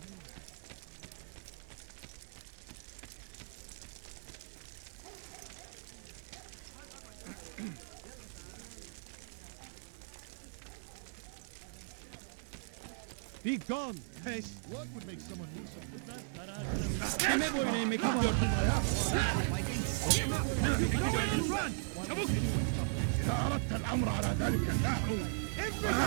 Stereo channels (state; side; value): silent; left; digital silence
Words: Be gone, pest! What would make someone do something? Kime boyun eğmek istiyorsun? Run! Çabuk! إذا أردت الأمر على ذلك النحو